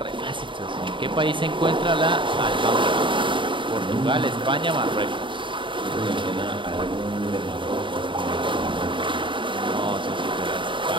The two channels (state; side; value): late; left; 0.24 ms